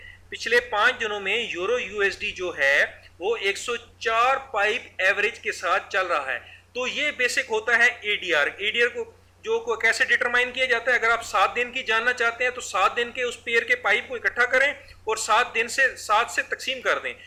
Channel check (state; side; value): identical; both; correlation 1.00